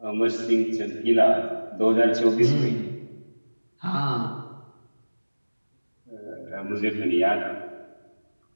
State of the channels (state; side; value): inverted; both; correlation -1.00